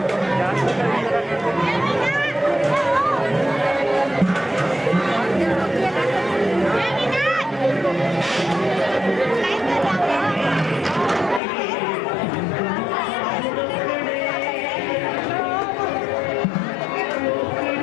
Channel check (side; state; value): right; drops out; at 11.4 s